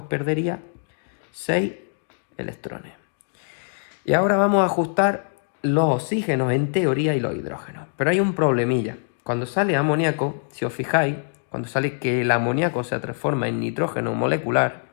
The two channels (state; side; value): silent; right; digital silence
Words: perdería 6 electrones. Y ahora vamos a ajustar los oxígenos en teoría y los hidrógenos. Pero hay un problemilla. Cuando sale amoníaco, si os fijáis, cuando sale que el amoníaco se transforma en nitrógeno molecular,